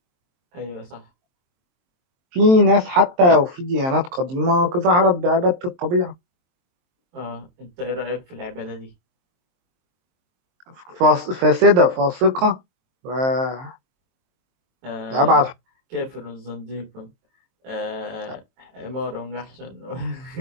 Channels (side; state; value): left; late; 23 ms